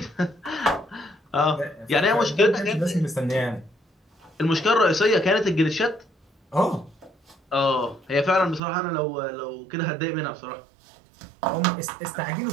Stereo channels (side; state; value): left; drops out; at 8.6 s